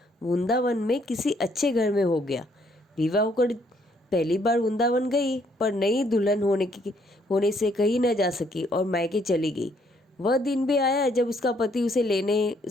वृंदावन में किसी अच्छे घर में हो गया। विवाह होकर पहली बार वृंदावन गई, पर नई दुल्हन होने से कहीं न जा सकी और मायके चली गई। वह दिन भी आया जब उसका पति उसे लेने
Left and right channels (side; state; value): both; normal; correlation 0.68